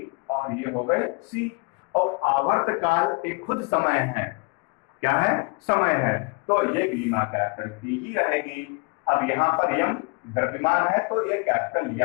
और ये हो गए सी, और आवर्तकाल एक खुद समय है, क्या है, समय है, तो ये बीमा कैपिटल टी ही रहेगी। अब यहाँ पर यम द्रव्यमान है तो ये कैपिटल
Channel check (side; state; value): right; quieter; 31.0 dB